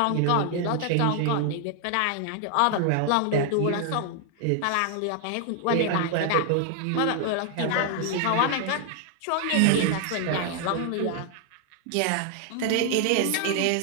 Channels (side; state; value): both; different; correlation 0.00